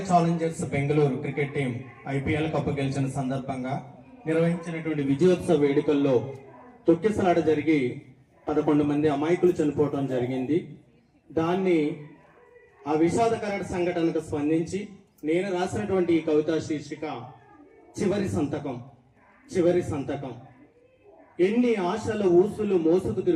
Challengers Bengaluru cricket team IPL cup గెలిచిన సందర్భంగా నిర్వహించినటువంటి విజయోత్సవ వేడుకల్లో తొక్కిసలాట జరిగి 11 మంది అమాయకులు చనిపోవడం జరిగింది. దాన్ని ఆ విషాదకర సంఘటనకు స్పందించి నేను రాసినటువంటి ఈ కవితా శీర్షిక చివరి సంతకం. ఎన్ని ఆశల ఊసులు మోసుకు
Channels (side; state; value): both; identical; correlation 1.00